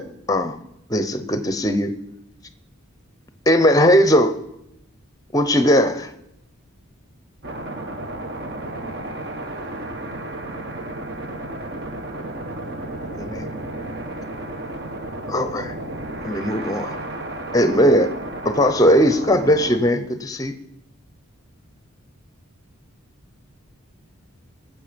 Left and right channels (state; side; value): normal; both; correlation 0.49